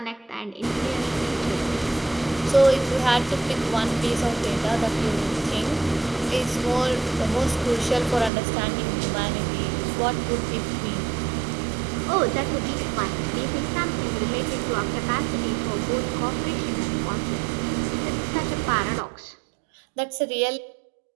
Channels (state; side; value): drops out; left; at 8.3 s